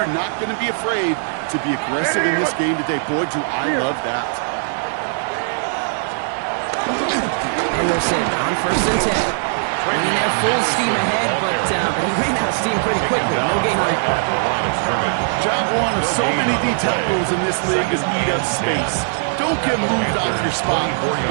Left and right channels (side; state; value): left; silent; 64 dB below the other